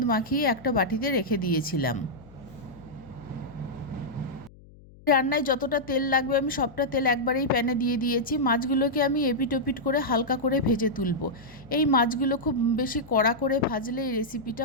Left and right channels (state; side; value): noise; left; hum, 23 dB below the sound